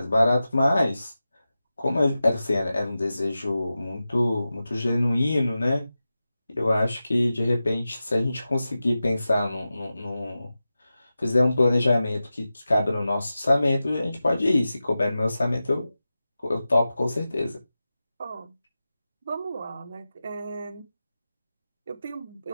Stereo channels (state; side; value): inverted; both; correlation -0.93